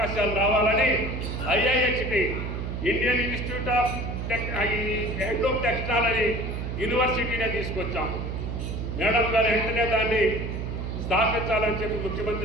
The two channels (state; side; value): noise; right; hum, 4 dB below the sound